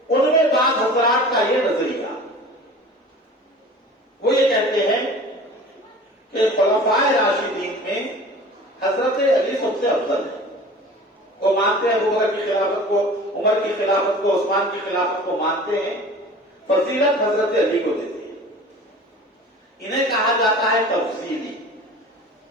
ان میں بعض حضرات کا یہ نظریہ، وہ یہ کہتے ہیں کہ خلفاء راشدین میں حضرت علی سب سے افضل ہے. وہ مانتے ہیں ابو بکر کی خلافت کو، عمر کی خلافت کو، عثمان کی خلافت کو مانتے ہیں، فضیلت حضرت علی کو دیتے ہیں. انہیں کہا جاتا ہے تفصیلی.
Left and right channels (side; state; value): both; normal; correlation 0.41